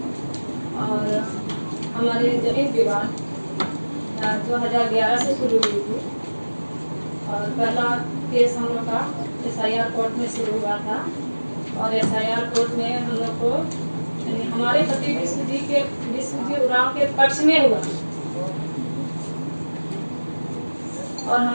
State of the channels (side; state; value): both; inverted; correlation -1.00